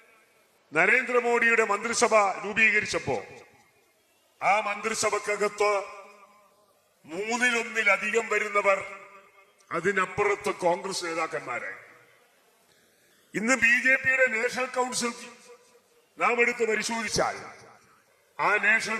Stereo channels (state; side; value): identical; both; correlation 1.00